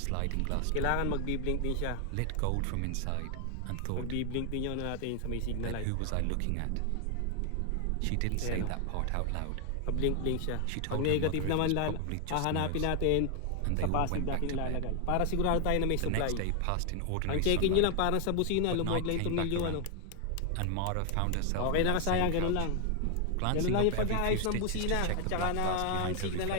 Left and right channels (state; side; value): different; both; correlation 0.00